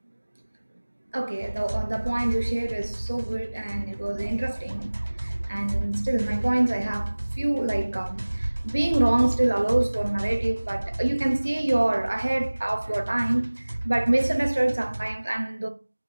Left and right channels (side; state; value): both; inverted; correlation -1.00